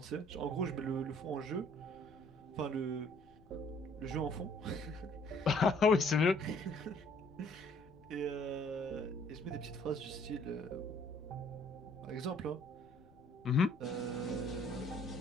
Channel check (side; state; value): left; noise; rumble, 27 dB below the sound